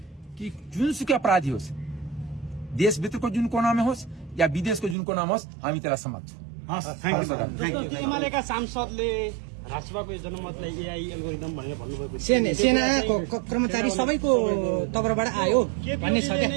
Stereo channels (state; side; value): drops out; left; at 5.0 s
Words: कि जुनसुकै अपराधी होस्, देशभित्रको जुन कोनामा होस् या विदेशको जुन कोनामा होस्, हामी त्यसलाई समात्छौँ। एमालेका सांसदले राष्ट्रसभाको जनमतलाई एआई एल्गोरिदम भनेर भन्नुभएको सेनाको कर्मचारी सबैको तर्फबाट आयो भन्ने छ क्या।